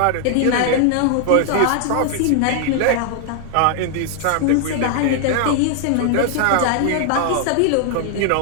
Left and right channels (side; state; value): both; different; correlation 0.00